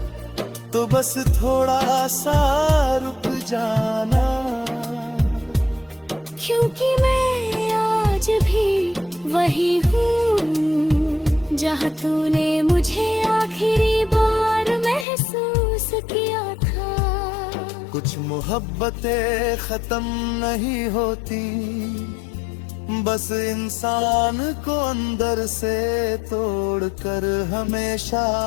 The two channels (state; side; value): drops out; right; at 15.1 s